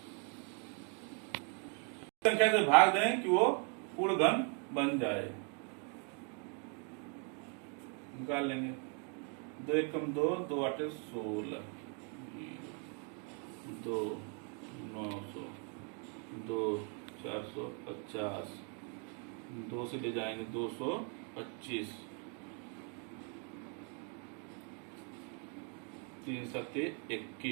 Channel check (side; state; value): left; quieter; 39.7 dB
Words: संख्या से भाग दें कि वो पूर्ण घन बन जाए, निकाल लेंगे। 2 एकम 2, 2 आठे 16, 2 900, 2 450, 2 से ले जाएंगे 225, 3 सत्ते